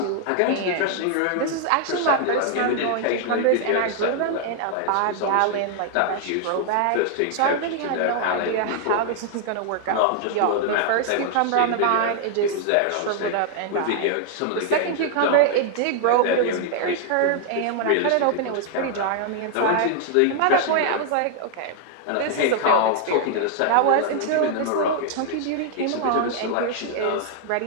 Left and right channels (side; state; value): both; different; correlation 0.00